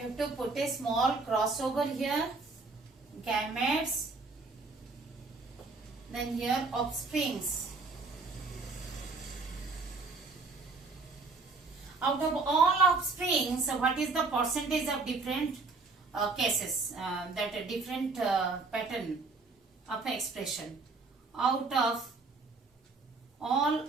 You have to put a small cross over here, gametes, then here offsprings. Out of all offsprings, what is the percentage of different cases, that a different pattern of expression? Out of all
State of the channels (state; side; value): quieter; left; 3.9 dB